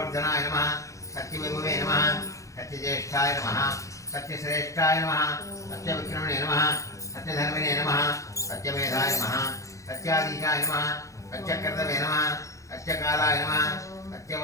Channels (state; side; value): late; right; 0.15 ms